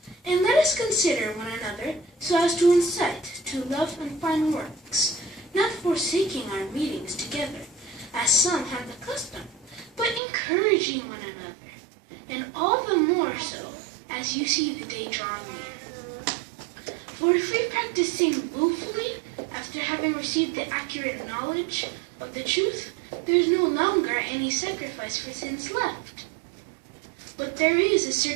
And let us consider one another so as to incite to love and fine works, not forsaking our meetings together, as some have the custom, but encouraging one another, and all the more so as you see the day drawing near. For if we practice sin willfully after having received the accurate knowledge of the truth, there is no longer any sacrifice for sins left. But there is a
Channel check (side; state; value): left; drops out; at 10.2 s